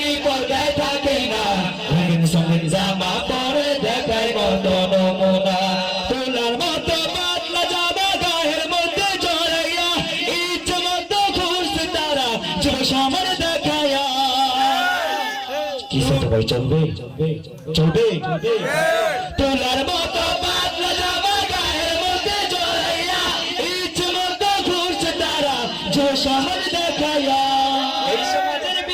পর্দায় থাকে না, রঙিন সঙ্গিন জামা পরে দেখায় কত নমুনা। তোলার মতো পাতলা জামা গায়ের মধ্যে জড়াইয়া ইচ্ছে মতো ঘুরছে তারা যুব সমাজ দেখাইয়া। কি সেটা ভাই চলবে চলবে? তোলার মতো পাতলা জামা গায়ের মধ্যে জড়াইয়া ইচ্ছে মতো ঘুরছে তারা যুব সমাজ দেখাইয়া। এই সমাজের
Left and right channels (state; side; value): identical; both; correlation 1.00